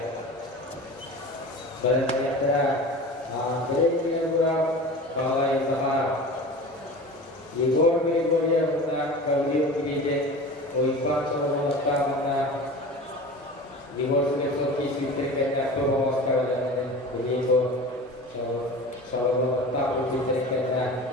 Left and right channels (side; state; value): both; normal; correlation 0.35